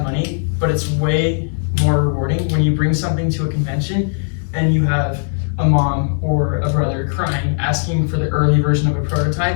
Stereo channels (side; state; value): right; silent; 67 dB below the other